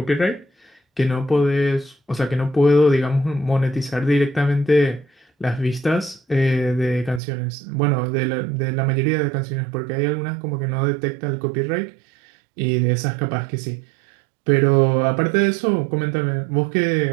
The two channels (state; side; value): drops out; left; at 7.2 s